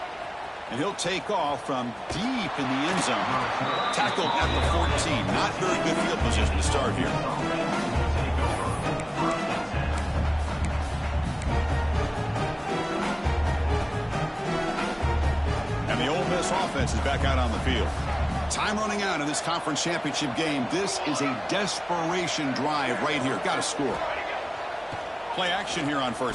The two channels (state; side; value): identical; both; correlation 1.00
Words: And he'll take off from deep in the end zone. Tackled at the 14. Not very good field position to start here. And the Ole Miss offense is back out on the field. Time running out in this conference championship game. This is a desperation drive right here. Got to score. Play action here on